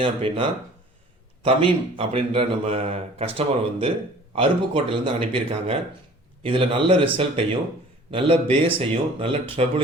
அப்படின்னா தமீம் அப்படின்ற நம்ம கஸ்டமர் வந்து அருப்புக்கோட்டையிலேருந்து அனுப்பியிருக்காங்க. இதில் நல்ல ரிசல்ட்டையும் நல்ல பேஸையும் நல்ல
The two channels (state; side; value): normal; both; correlation 0.48